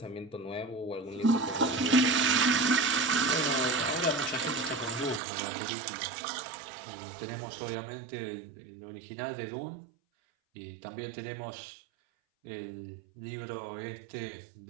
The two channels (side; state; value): left; drops out; at 5.2 s